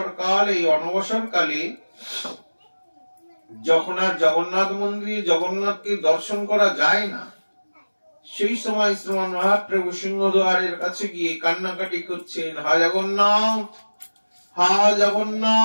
কাল, এই অনবসর কালে যখন আর জগন্নাথ মন্দিরে জগন্নাথকে দর্শন করা যায় না, সেই সময় শ্রীমান মহাপ্রভু সিংহদ্বারের কাছে গিয়ে কান্নাকাটি করছেন, হা জগন্নাথ, হা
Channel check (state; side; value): inverted; both; correlation -1.00